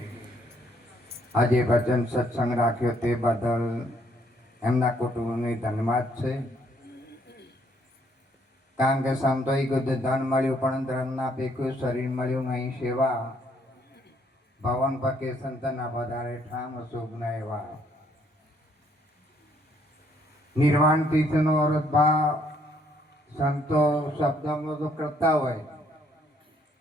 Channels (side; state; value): both; normal; correlation 0.68